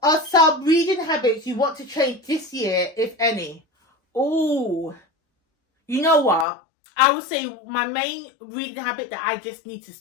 are some reading habits you want to change this year, if any? Oh, you know what? I would say my main reading habit that I just need to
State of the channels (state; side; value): drops out; right; at 6.5 s